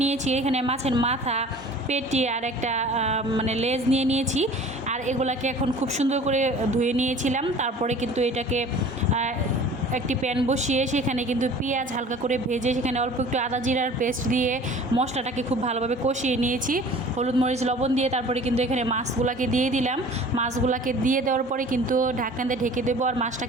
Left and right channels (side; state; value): both; normal; correlation 0.45